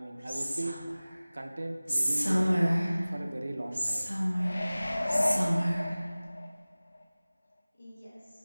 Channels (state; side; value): inverted; both; correlation -0.98